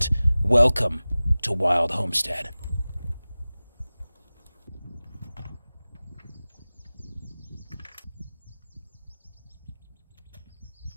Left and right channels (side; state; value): both; inverted; correlation -0.98